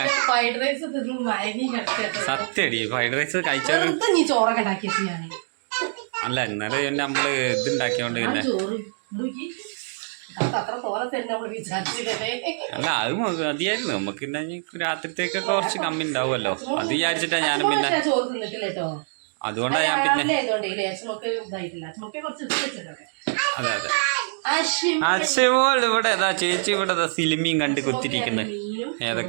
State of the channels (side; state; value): left; silent; digital silence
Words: ഫ്രൈഡ് റൈസ് തിന്ന് മയങ്ങി കിടക്കട്ടെ. സത്യടി ഫ്രൈഡ് റൈസ് കഴിച്ചത് വെറുതെ നീ ചോറൊക്കെ ഉണ്ടാക്കിയത് ഞാൻ അല്ല ഇന്നലെ നമ്മള് ഇതുണ്ടാക്കിയോണ്ട് പിന്നെ ചോറ് നോക്കി അത്ര തോനെ തന്നെ നമ്മള് വിചാരിച്ചില്ലേ. അല്ല അത് മതിയായിരുന്നു നമുക്ക്. പിന്നെ രാത്രിത്തേക്കൊക്കെ കുറച്ച് കമ്മി ഉണ്ടാവുമല്ലോ അത് വിചാരിച്ചിട്ടാ ഞാനും പിന്നെ ചോറ് തിന്നിട്ടില്ല കേട്ടോ. അതുകൊണ്ടാ ഞാൻ പിന്നെ അതെ അതെ. അശ്വമോൾ ഇവിടെ ചേച്ചി ഇവിടെ സിനിമയും കണ്ട് കുത്തിരിക്കുന്നത്,